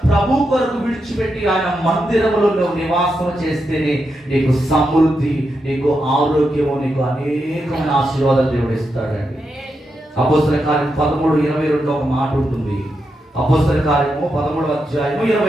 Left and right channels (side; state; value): both; normal; correlation 0.85